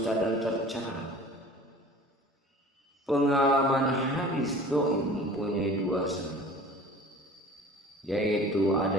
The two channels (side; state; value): both; normal; correlation 0.44